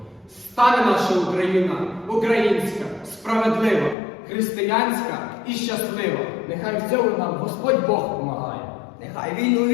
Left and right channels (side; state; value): right; drops out; at 4.0 s